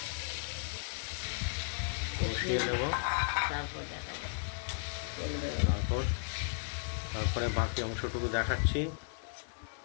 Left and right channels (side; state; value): right; silent; digital silence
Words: কষিয়ে নেব। তারপরে বাকি অংশটুকু দেখাচ্ছি।